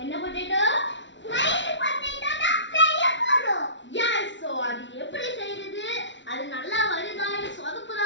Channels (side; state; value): right; late; 0.53 ms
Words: என்ன பொட்டேட்டோ? ஸ்மைலி பொட்டேட்டோ தான் செய்ய போறோம். எஸ். சோ அது எப்படி செய்யறது? அது நல்லா வருதா இல்ல